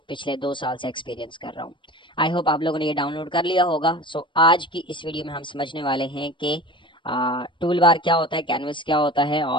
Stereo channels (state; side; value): late; right; 0.24 ms